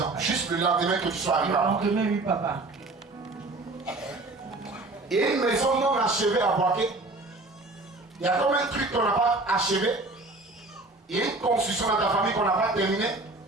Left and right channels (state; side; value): quieter; left; 3.0 dB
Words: juste le lendemain que tu sois arrivé. Le lendemain, oui, papa. Et une maison non achevée à Boaké. Il y a comme un truc qu'on n'a pas achevé. Il y a une construction dans ta famille qu'on n'a pas terminée.